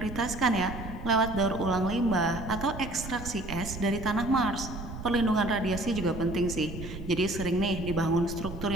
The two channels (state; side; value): noise; right; rumble, 10 dB below the sound